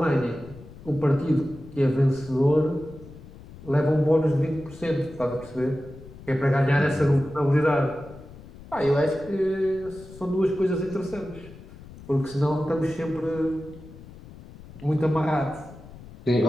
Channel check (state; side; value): noise; left; rumble, 18 dB below the sound